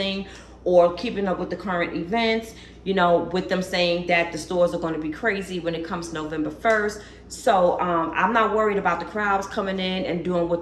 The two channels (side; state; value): both; identical; correlation 1.00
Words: or keeping up with the current events, you know, with them saying that the stores are going to be crazy when it comes November 1st. So I'm not worried about the crowds coming in and doing